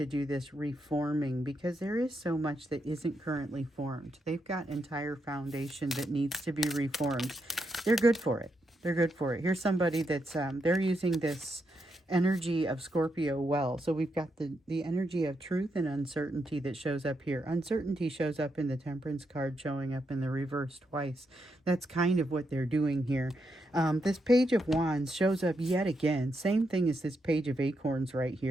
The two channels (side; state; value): both; normal; correlation 0.82